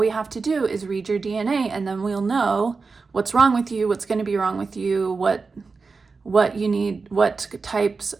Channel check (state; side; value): quieter; left; 4.4 dB